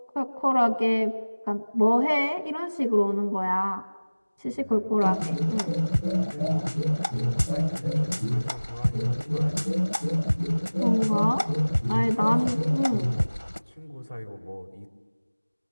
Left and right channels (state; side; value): inverted; both; correlation -1.00